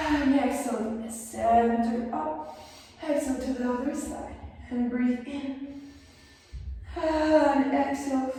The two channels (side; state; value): both; identical; correlation 1.00